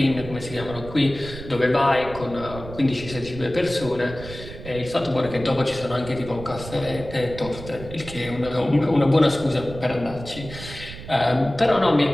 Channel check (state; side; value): noise; right; rumble, 13 dB below the sound